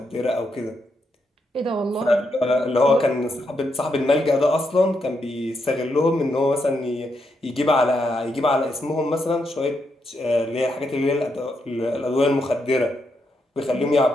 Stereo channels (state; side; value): normal; both; correlation 0.81